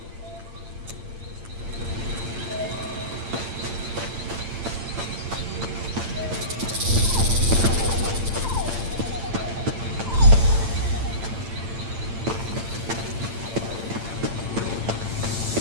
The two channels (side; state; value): left; late; 8.8 ms